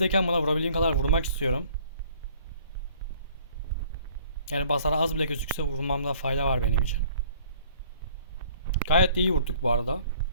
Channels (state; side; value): inverted; both; correlation -0.56